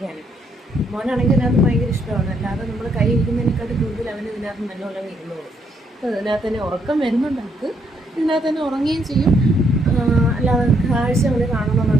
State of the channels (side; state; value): both; normal; correlation 0.73